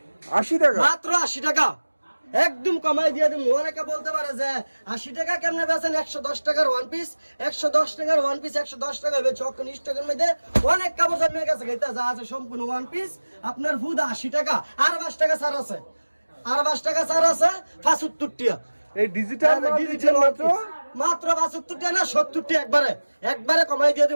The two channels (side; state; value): both; inverted; correlation -1.00